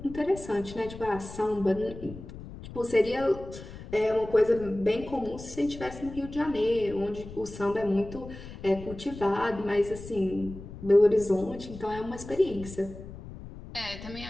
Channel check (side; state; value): left; noise; rumble, 13 dB below the sound